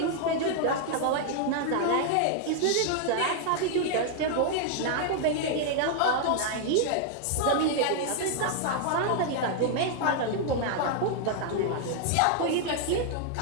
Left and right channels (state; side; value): different; both; correlation 0.00